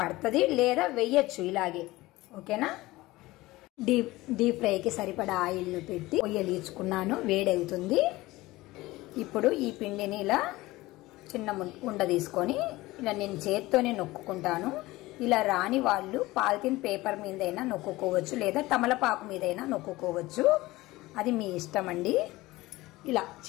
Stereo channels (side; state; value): right; quieter; 19.1 dB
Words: పడుతుంది, లేదా వెయ్యొచ్చు ఇలాగే. ఓకేనా? డీప్ ఫ్రైకి సరిపడా ఆయిల్ను పెట్టి పొయ్యలీచుకున్నాను, వేడవుతుంది. ఇప్పుడు ఈ పిండిని ఇలా చిన్న ఉండ తీసుకొని ఇలా నేను చేత్తోనే నొక్కుకుంటాను. ఇలా రాని వాళ్ళు పాలిథిన్ పేపర్ మీదైనా నొక్కుకోవచ్చు, లేదా తమలపాకు మీదైనా నొక్కుకోవచ్చు, అది మీ ఇష్టం అండి. ఇలా